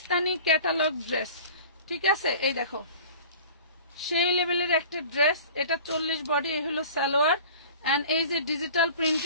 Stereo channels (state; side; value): inverted; both; correlation -0.42